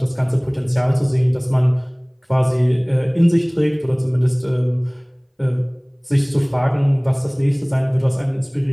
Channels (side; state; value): both; identical; correlation 1.00